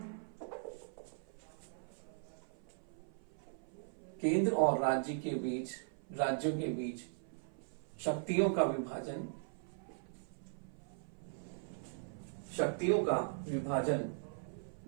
केंद्र और राज्यों के बीच शक्तियों का विभाजन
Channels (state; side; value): silent; left; 51 dB below the other